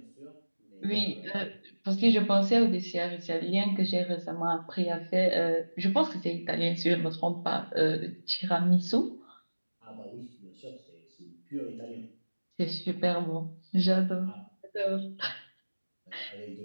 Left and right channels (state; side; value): inverted; both; correlation -1.00